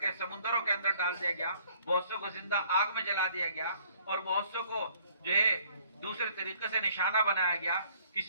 سمندروں کے اندر ڈال دیا گیا. بہت سو کو زندہ آگ میں جلا دیا گیا اور بہت سو کو جو ہے دوسرے طریقے سے نشانہ بنایا گیا.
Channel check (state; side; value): inverted; both; correlation -0.60